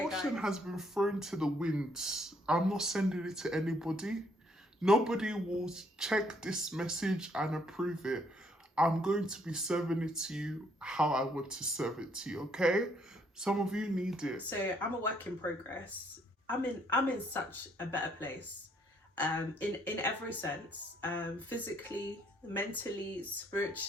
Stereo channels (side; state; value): both; normal; correlation 0.68